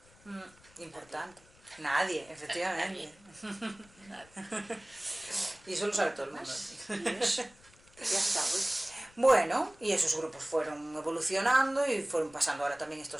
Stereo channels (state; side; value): noise; left; rumble, 27 dB below the sound